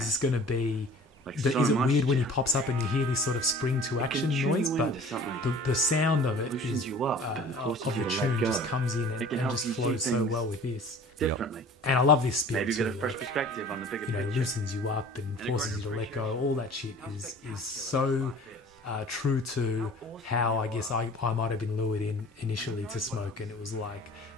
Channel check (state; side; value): normal; both; correlation 0.45